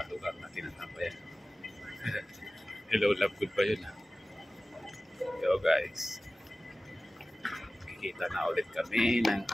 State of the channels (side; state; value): both; normal; correlation 0.97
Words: lugar na tinatampayan. Hello, love, good ba yun? Yo guys, kikita na ulit kami ng